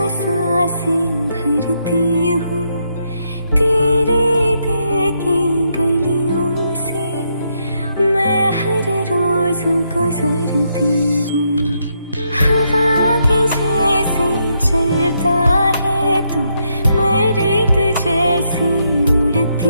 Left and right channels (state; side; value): inverted; both; correlation -0.78